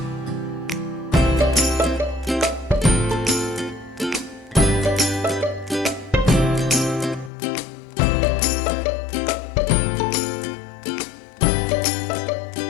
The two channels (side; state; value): right; drops out; at 7.3 s